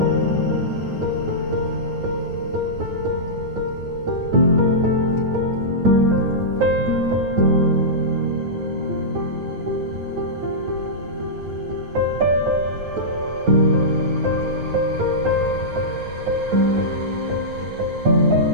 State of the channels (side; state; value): left; late; 9.3 ms